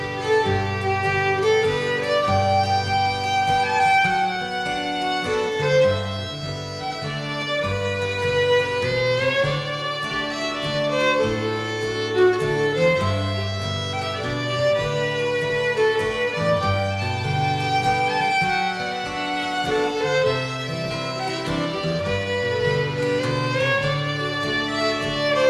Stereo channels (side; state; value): both; identical; correlation 1.00